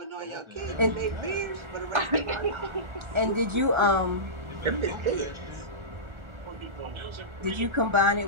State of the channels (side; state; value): left; late; 1.4 ms